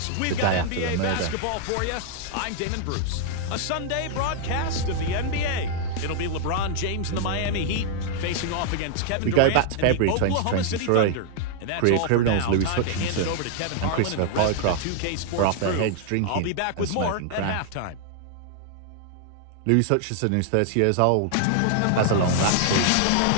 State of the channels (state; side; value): different; both; correlation 0.00